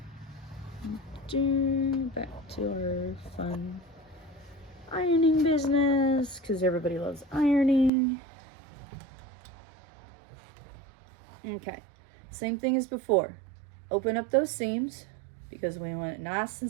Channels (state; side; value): drops out; left; at 7.9 s